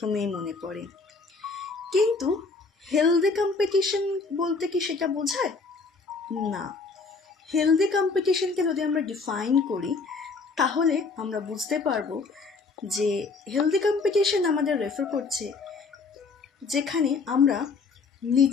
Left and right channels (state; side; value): quieter; right; 4.3 dB